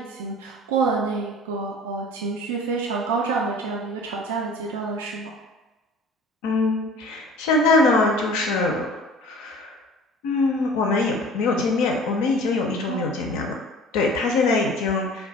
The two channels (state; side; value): normal; both; correlation 0.44